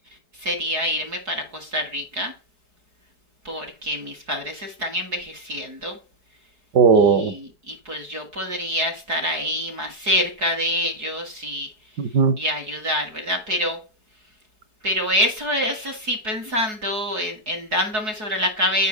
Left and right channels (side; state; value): left; late; 4.7 ms